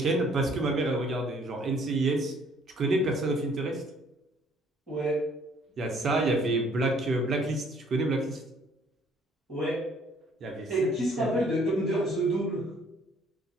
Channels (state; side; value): normal; both; correlation 0.60